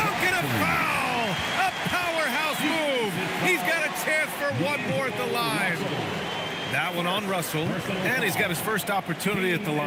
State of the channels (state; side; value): identical; both; correlation 1.00